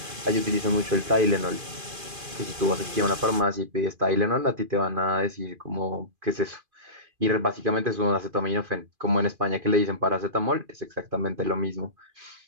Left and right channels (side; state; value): left; late; 2.4 ms